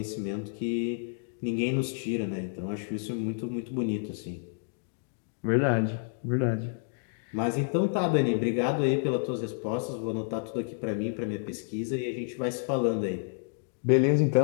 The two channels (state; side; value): silent; right; digital silence